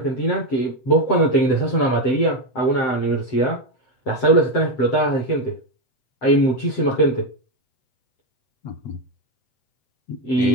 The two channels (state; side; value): late; right; 7.8 ms